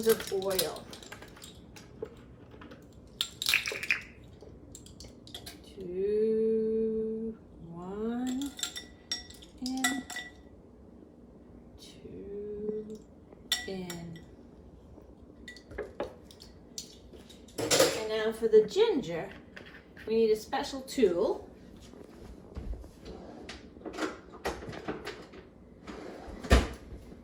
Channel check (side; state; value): both; identical; correlation 1.00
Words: of oil. 2, 1, and 2 in. And now for the ginger, we need a special tool.